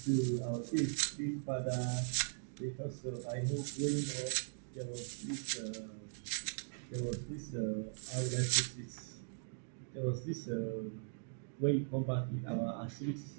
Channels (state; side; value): silent; left; digital silence